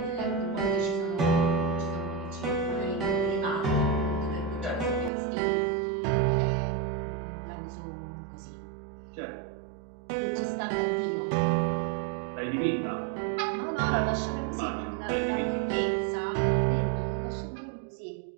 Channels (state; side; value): drops out; left; at 5.1 s